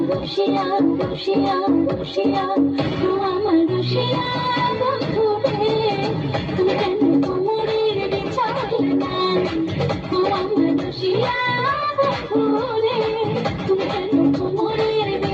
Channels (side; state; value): both; identical; correlation 1.00